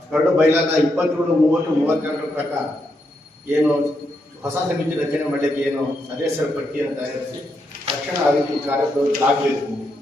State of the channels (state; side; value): normal; both; correlation 0.81